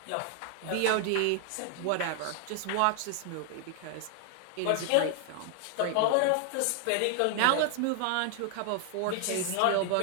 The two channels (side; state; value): both; different; correlation 0.00